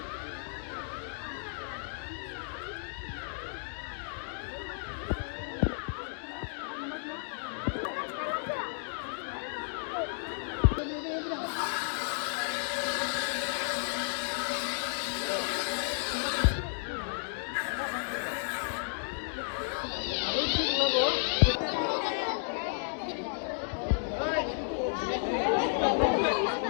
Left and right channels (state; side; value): silent; right; digital silence